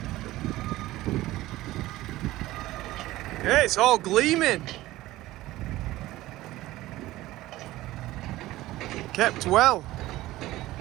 Yeah, it's all gleaming. Kept well.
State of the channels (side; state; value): left; quieter; 16.9 dB